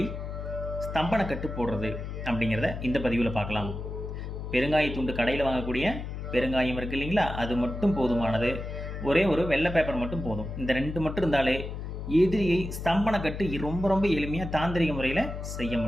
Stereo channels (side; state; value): left; noise; hum, 7 dB below the sound